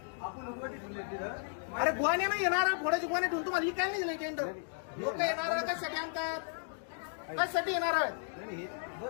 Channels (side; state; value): right; silent; digital silence